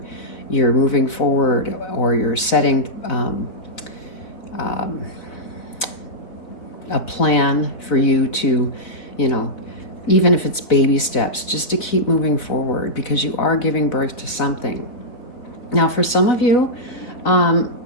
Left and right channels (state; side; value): late; right; 4.0 ms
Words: moving forward, or you're setting a plan for you to, even if it's baby steps, just to keep moving forward, because you are giving birth to something. Now, for some of you,